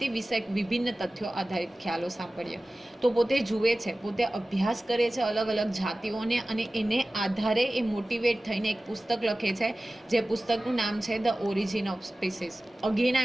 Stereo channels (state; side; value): normal; both; correlation 0.97